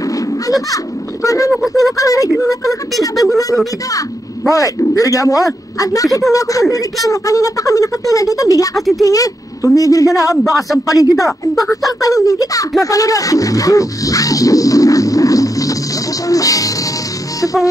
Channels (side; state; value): both; normal; correlation 0.83